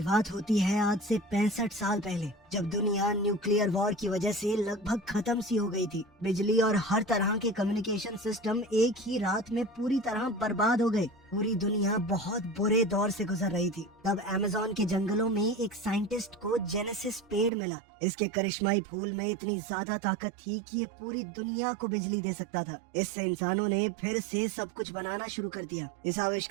होती है आज से 65 साल पहले, जब दुनिया न्यूक्लियर वॉर की वजह से लगभग खत्म सी हो गई थी। बिजली और हर तरह के कम्युनिकेशन सिस्टम एक ही रात में पूरी तरह बर्बाद हो गए। पूरी दुनिया बहुत बुरे दौर से गुजर रही थी। तब अमेज़न के जंगलों में एक साइंटिस्ट को जेनेसिस पेड़ मिला। इसके करिश्माई फूल में इतनी ज्यादा ताकत थी कि ये पूरी दुनिया को बिजली दे सकता था। इससे इंसानों ने फिर से सब कुछ बनाना शुरू कर दिया। इस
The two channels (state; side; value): drops out; left; at 17.5 s